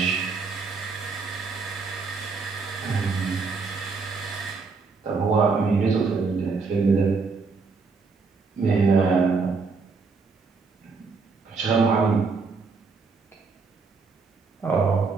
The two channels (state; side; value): quieter; left; 4.6 dB